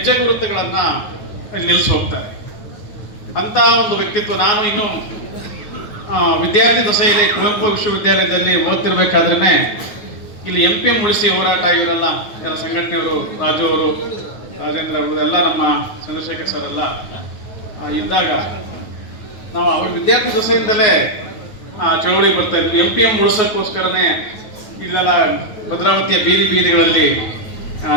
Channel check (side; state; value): right; late; 9.3 ms